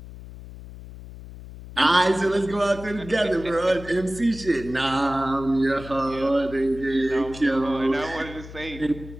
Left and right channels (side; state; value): left; noise; hum, 14 dB below the sound